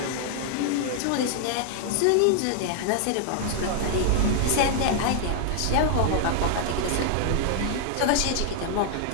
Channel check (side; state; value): both; different; correlation 0.00